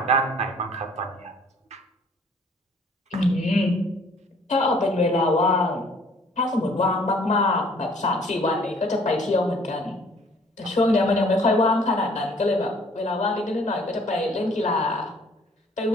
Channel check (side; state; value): both; normal; correlation 0.57